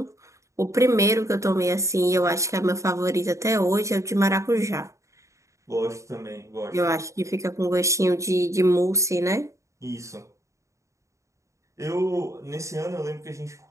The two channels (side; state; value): left; late; 0.15 ms